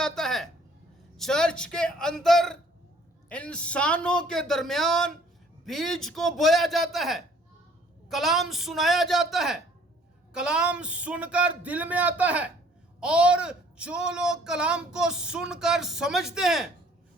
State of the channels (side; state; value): both; normal; correlation 0.58